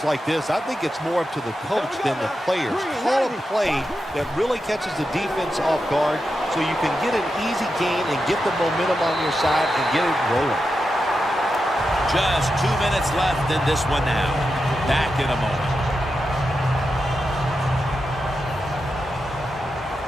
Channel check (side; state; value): both; normal; correlation 0.88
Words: like this, I think it's more up to the coach than the players. Call a play that really catches the defense off guard so you can get an easy gain and get the momentum on your side and get it rolling. Just 2 minutes left in this one now. Back in a moment.